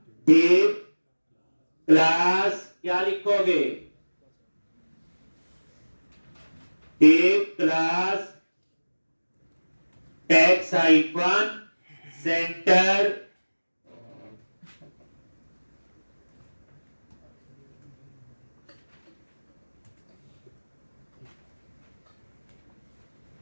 डिव क्लास, क्या लिखोगे, div class text hyphen center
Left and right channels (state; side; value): inverted; both; correlation -1.00